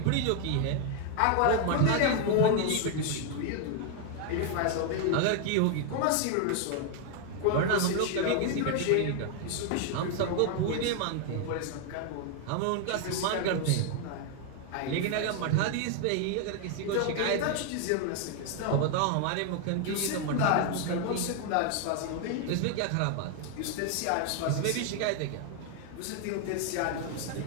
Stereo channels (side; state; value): both; different; correlation 0.01